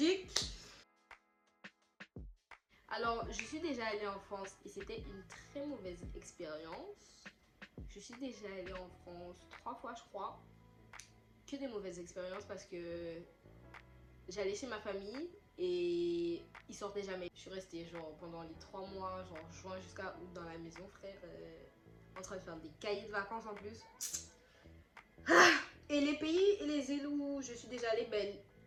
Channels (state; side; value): identical; both; correlation 1.00